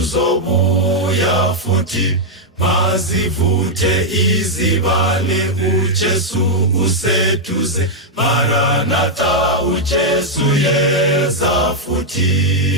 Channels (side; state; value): both; normal; correlation -0.03